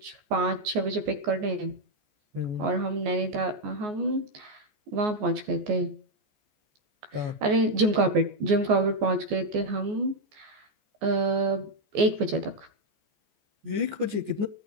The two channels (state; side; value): late; left; 14 ms